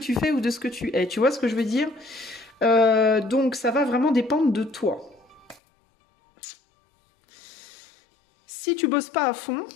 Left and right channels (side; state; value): right; drops out; at 5.6 s